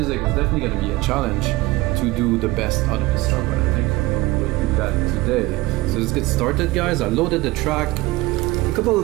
It's definitely going to be a challenge to do the best out of this track, but I think we'll do that today. So let's get started, guys. I loaded the track. A couple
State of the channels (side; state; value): left; quieter; 19.6 dB